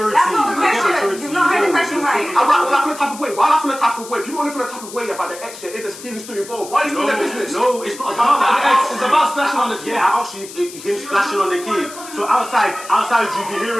That's not the question. You've not heard the question right. Why I feel a type of way? Why I feel a type of way? People only feel a type of way about the ex if there's feelings still involved. Why is it in their business? No, it's not about that. It's about splashing on the kid. Yeah, actually, him splashing on the kid. So outside, you'll be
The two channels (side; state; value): left; noise; hiss, 15 dB below the sound